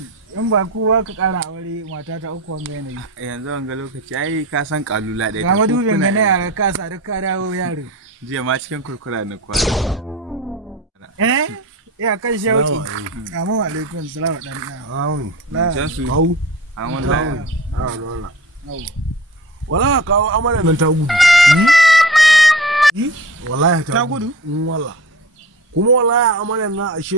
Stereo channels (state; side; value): normal; both; correlation 0.35